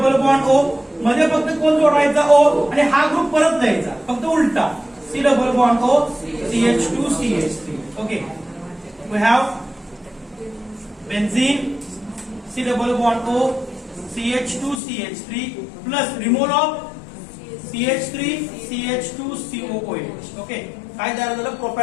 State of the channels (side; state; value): right; drops out; at 14.8 s